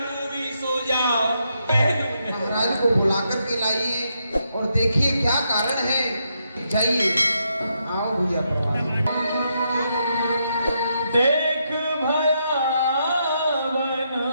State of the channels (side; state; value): both; inverted; correlation -0.79